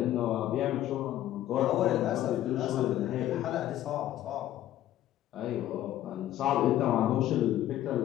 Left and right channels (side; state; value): right; quieter; 13.1 dB